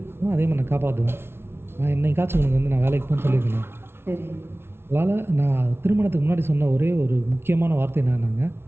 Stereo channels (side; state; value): left; late; 0.12 ms